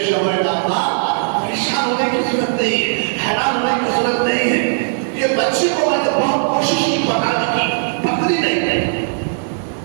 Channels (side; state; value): left; silent; digital silence